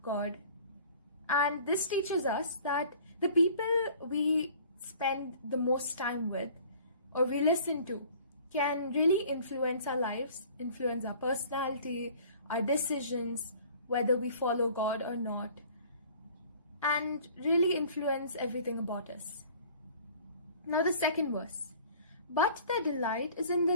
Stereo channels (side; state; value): both; inverted; correlation -0.50